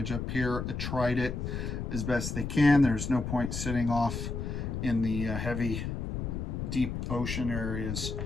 up here. I tried it as best they can. There's no point sitting off in the heavy, deep ocean areas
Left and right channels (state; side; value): noise; left; rumble, 3 dB below the sound